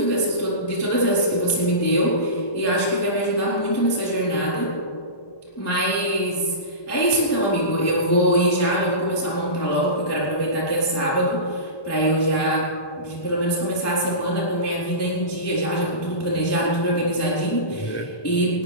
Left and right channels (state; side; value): late; right; 1.2 ms